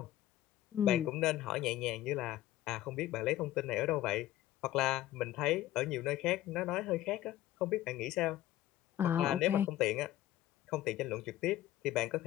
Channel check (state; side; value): quieter; right; 14.2 dB